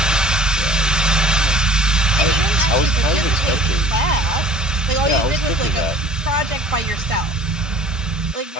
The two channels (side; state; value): both; normal; correlation 0.47